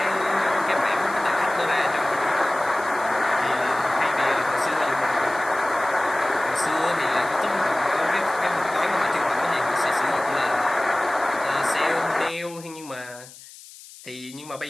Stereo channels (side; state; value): left; noise; hiss, 19 dB below the sound